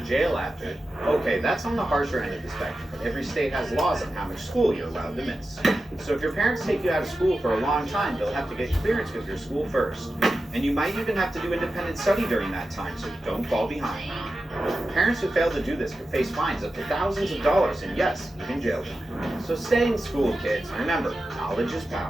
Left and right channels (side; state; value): both; normal; correlation 0.92